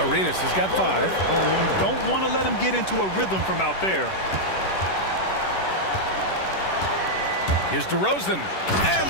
Arenas has got 5. Don't want to let him get into a rhythm from out there. Here's DeRozan. And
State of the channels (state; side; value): late; right; 11 ms